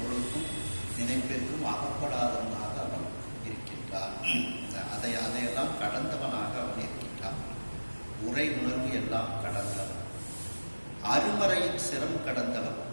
நினைப்பிற்கும் அகப்படாதவனாக அவன் இருக்கின்றான். அதையெல்லாம் கடந்தவனாக அவன் இருக்கின்றான். உரை உணர்வு எல்லாம் கடந்தவன். அருமறையின் சிரம் கடந்தவன்.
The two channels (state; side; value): inverted; both; correlation -1.00